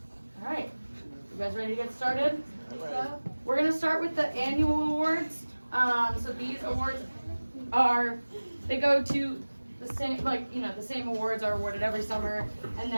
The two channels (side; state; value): both; inverted; correlation -1.00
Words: All right, you guys ready to get started? We're gonna start with the annual awards. So these awards they go to the same, the same awards are awarded every summer, and